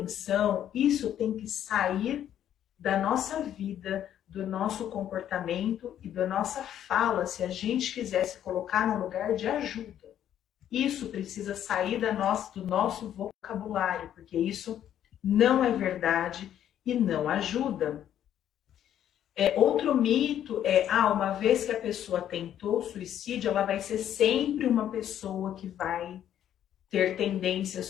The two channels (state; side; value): quieter; right; 10.6 dB